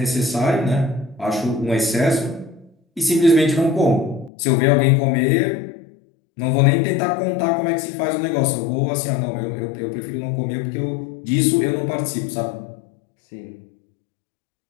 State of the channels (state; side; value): drops out; right; at 4.3 s